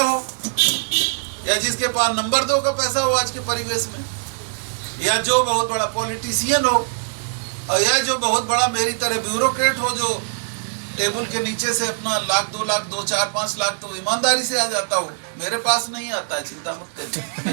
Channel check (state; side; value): silent; left; 64 dB below the other